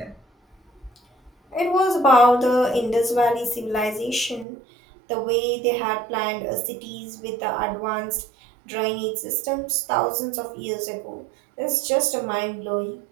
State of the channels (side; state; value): left; drops out; at 4.5 s